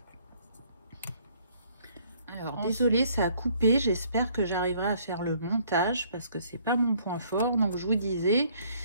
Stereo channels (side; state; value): both; inverted; correlation -0.62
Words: Alors, désolée, ça a coupé. J'espère que j'arriverai à faire le montage parce que c'est pas mon point fort. Donc, je vous disais,